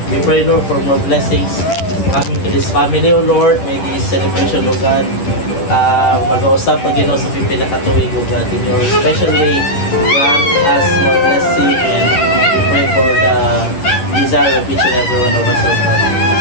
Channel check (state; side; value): late; right; 10 ms